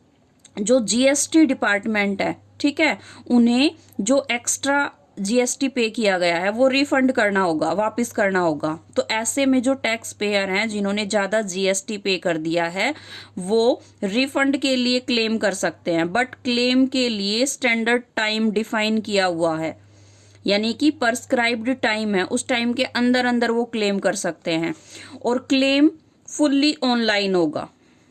जो जीएसटी डिपार्टमेंट है, ठीक है, उन्हें जो एक्स्ट्रा जीएसटी पे किया गया है वो रिफंड करना होगा, वापस करना होगा। तो ऐसे में जो टैक्स पेयर हैं जिन्होंने ज़्यादा जीएसटी पे कर दिया है वो रिफंड के लिए क्लेम कर सकते हैं, बट क्लेम के लिए स्टैंडर्ड टाइम डिफाइन किया हुआ है, यानी कि प्रिस्क्राइब्ड टाइम है, उस टाइम के अंदर अंदर वो क्लेम कर सकते हैं और क्लेम फुल्ली ऑनलाइन होगा।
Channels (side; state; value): both; identical; correlation 1.00